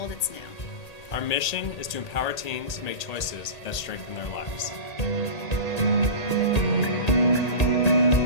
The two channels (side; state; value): right; late; 1.8 ms